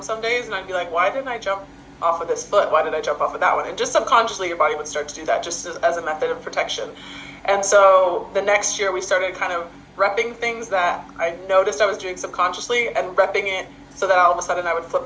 some days and I'd be like, why didn't I jump off of this foot? Why did I jump off of that one? And just subconsciously your body would start to do that just as a method of protection. And so the next year we started kind of repping things that I noticed I was doing subconsciously and repping it so that all of a sudden I would flip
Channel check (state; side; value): identical; both; correlation 1.00